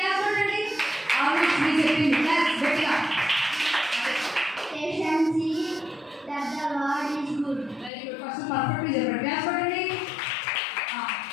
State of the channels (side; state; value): right; drops out; at 7.9 s